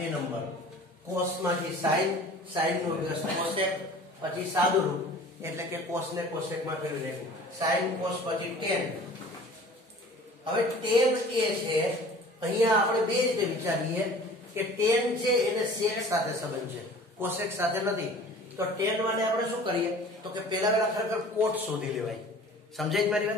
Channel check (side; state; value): both; normal; correlation 0.45